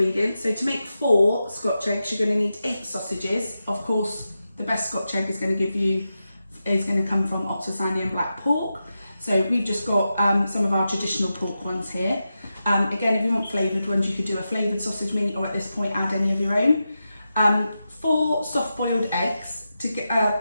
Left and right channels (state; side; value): inverted; both; correlation -0.90